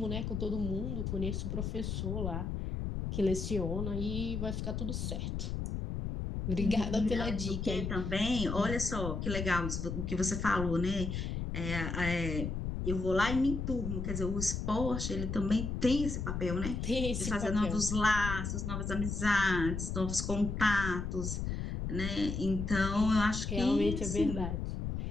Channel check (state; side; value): noise; left; rumble, 3 dB below the sound